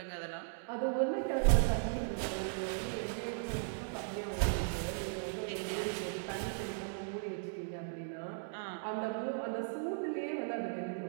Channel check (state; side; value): silent; left; digital silence